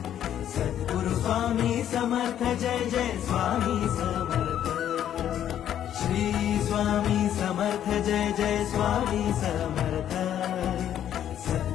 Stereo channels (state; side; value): quieter; right; 10.5 dB